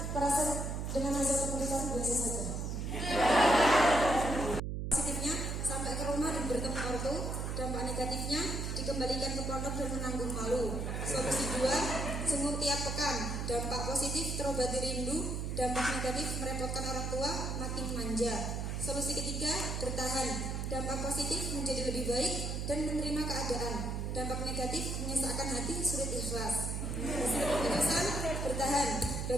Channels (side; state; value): right; noise; hum, 2 dB below the sound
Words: perasaan dengan hasil keputusan? Biasa saja. Positifnya sampai ke rumah dan bertemu ortu, dampak negatifnya dikembalikan ke pondok dan menanggung malu. Solusi 2, sungguh tiap pekan. Dampak positif terobati rindu, dampak negatif merepotkan orang tua, makin manja. Solusi ketiga, bertahan. Dampak positif menjadi lebih baik dan menerima keadaan. Dampak negatif menyesakkan hati, sulit ikhlas. Hasil keputusan, bertahan.